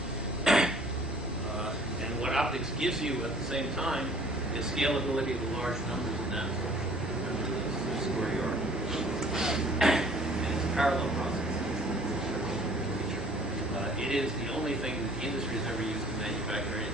And what optics gives you at the same time is scalability of the large numbers of nanostructures. Remember the square yard. And it's a parallel process. It is the only thing that the industry has ever used to manufacture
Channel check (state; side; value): normal; both; correlation 0.54